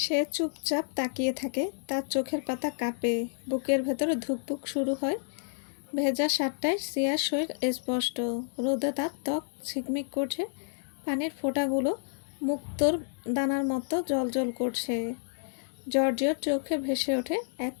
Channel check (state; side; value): silent; right; digital silence